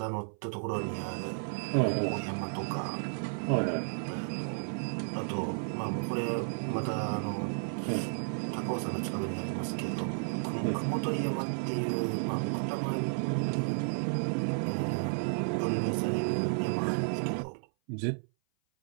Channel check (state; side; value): silent; left; 56 dB below the other